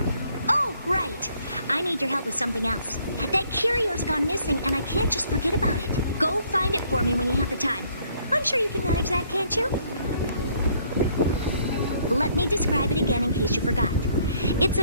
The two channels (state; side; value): inverted; both; correlation -0.64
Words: Oh, right. I need your help with something else. That curio's gone missing, and I can't just forget about it. Go find it for me when you have the time. I'm sure you can manage that, can't you? Let me describe it again in case you forgot. It's